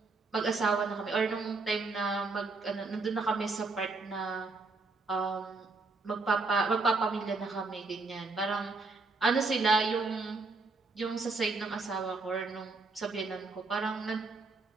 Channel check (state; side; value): quieter; left; 3.8 dB